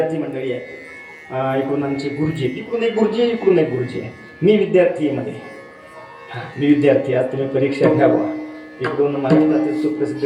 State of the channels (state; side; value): identical; both; correlation 1.00